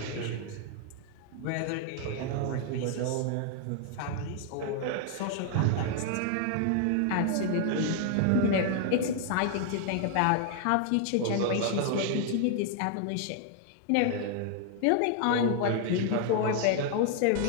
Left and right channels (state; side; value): different; both; correlation 0.00